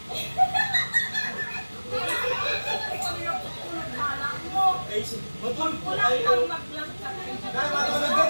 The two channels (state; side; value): inverted; both; correlation -1.00